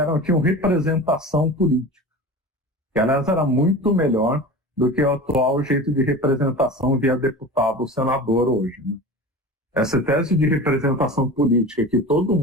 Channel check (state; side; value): normal; both; correlation 0.33